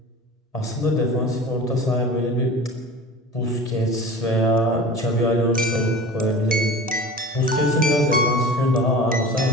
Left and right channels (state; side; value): normal; both; correlation 0.37